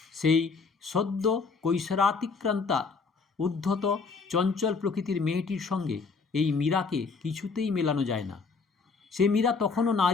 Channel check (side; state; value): right; quieter; 4.7 dB